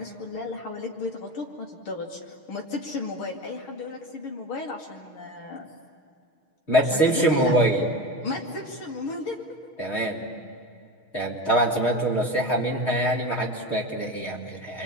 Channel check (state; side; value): late; right; 6.4 ms